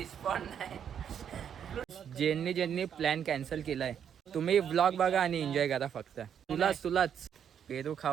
नाही. ज्यांनी plan cancel केलाय तुम्ही व्लॉग बघा आणि एन्जॉय करा फक्त. तुलाच पेरू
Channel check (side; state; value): left; quieter; 8.5 dB